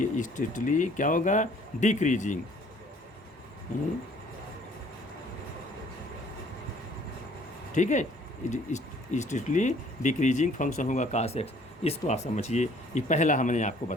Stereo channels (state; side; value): normal; both; correlation 0.57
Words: क्या होगा डिक्रीजिंग। ठीक है, स्ट्रिक्टली डिक्रीजिंग फंक्शन होगा कास एक्स, इसको आप समझिए, ये पहला हमने आपको